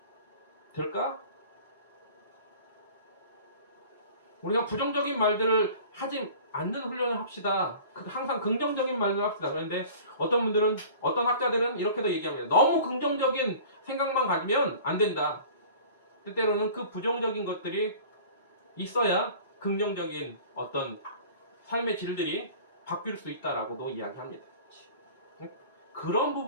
될까? 우리가 부정적인 말들을 하지 않는 훈련을 합시다. 항상 긍정적인 말을 합시다. 그런데 어떤 분들은, 어떤 학자들은 이렇게도 얘기합니다. 너무 긍정적인 생각만 가지면 안 된다. 때때로는 그 부정적인 것들이 있어야 긍정적인 어떤 삶의 질들이 바뀔 수 있다라고도 이야기합니다. 그런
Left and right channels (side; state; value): both; inverted; correlation -0.43